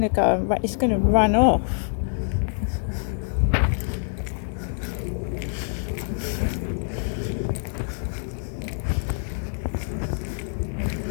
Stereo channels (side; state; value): right; silent; 59 dB below the other